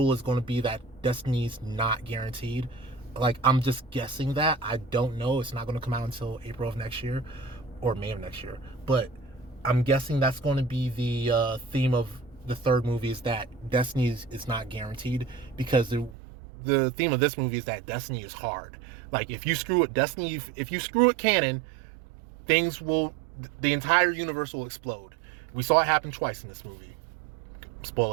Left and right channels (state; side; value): drops out; left; at 16.2 s